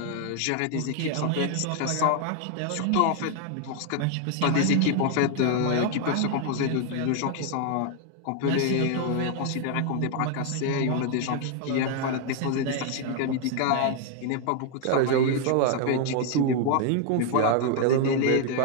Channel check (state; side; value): different; both; correlation 0.00